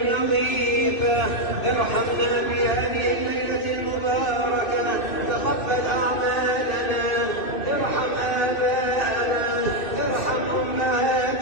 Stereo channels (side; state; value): right; late; 2.6 ms